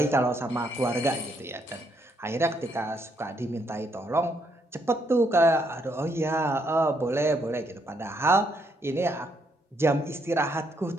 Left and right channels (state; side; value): normal; both; correlation 0.74